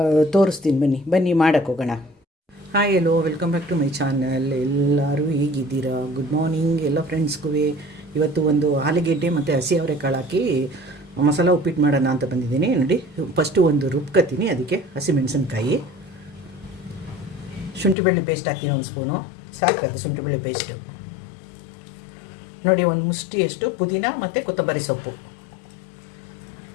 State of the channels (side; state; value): right; drops out; at 17.9 s